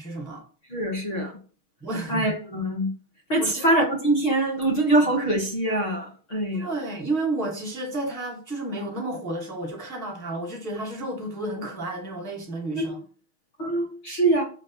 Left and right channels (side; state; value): right; late; 6.3 ms